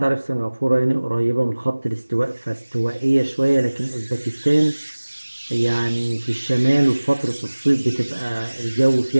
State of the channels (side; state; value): both; inverted; correlation -1.00